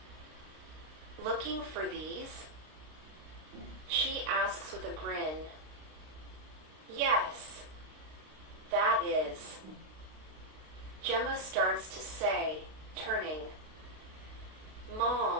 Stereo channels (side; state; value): left; late; 32 ms